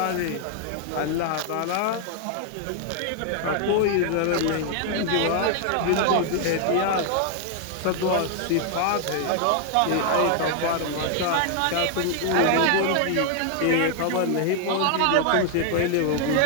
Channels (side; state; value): both; different; correlation 0.00